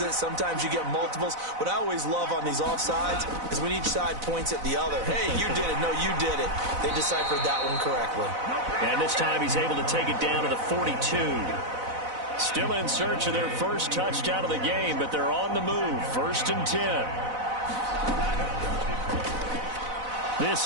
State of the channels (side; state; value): left; late; 4.0 ms